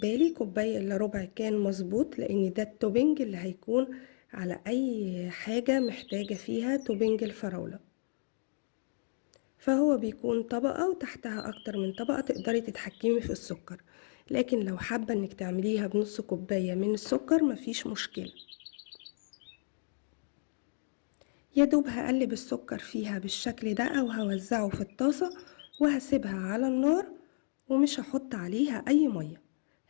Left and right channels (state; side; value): silent; right; digital silence